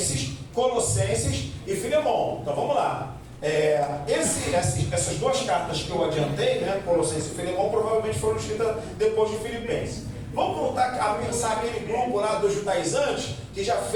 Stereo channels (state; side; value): identical; both; correlation 1.00